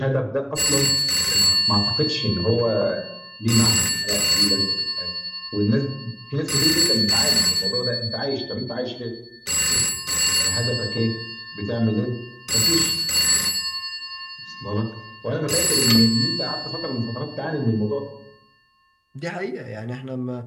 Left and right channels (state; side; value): identical; both; correlation 1.00